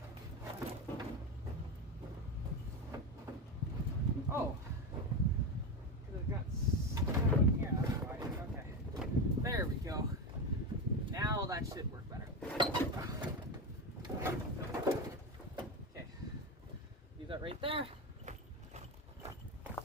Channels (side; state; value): both; normal; correlation 0.17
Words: Oh, because it got stuck in here, that's why. Okay, there we go. Now that should work better. Okay, leave that right there.